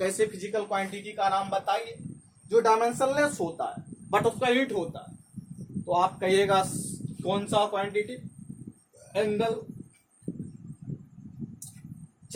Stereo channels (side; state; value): both; identical; correlation 1.00